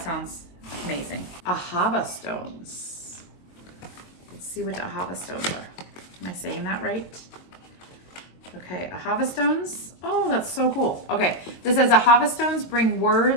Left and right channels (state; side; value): late; right; 22 ms